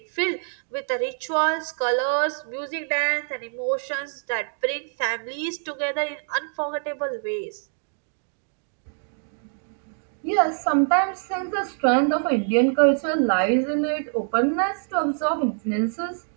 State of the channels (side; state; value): left; silent; digital silence